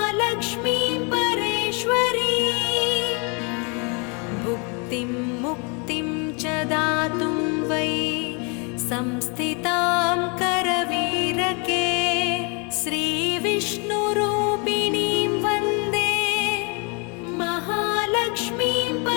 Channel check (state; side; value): quieter; right; 33.8 dB